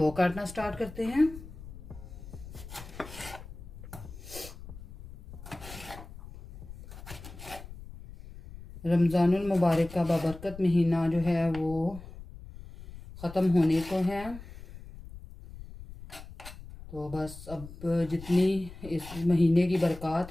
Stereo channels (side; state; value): left; noise; rumble, 15 dB below the sound